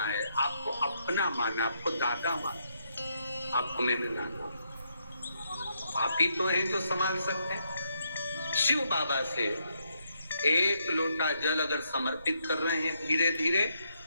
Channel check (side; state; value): both; inverted; correlation -0.77